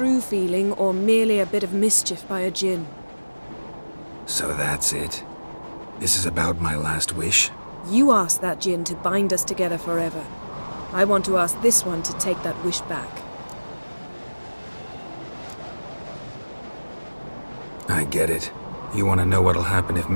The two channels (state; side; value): inverted; both; correlation -1.00